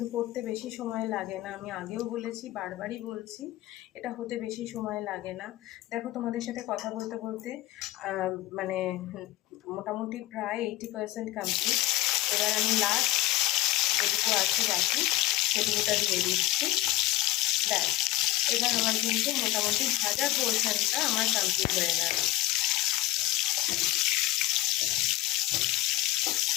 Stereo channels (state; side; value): quieter; right; 17.1 dB